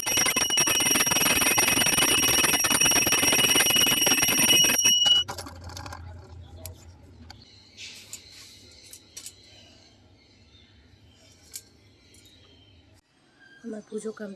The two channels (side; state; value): both; identical; correlation 1.00